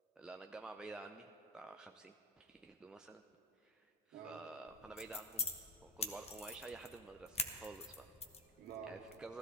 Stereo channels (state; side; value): normal; both; correlation 0.24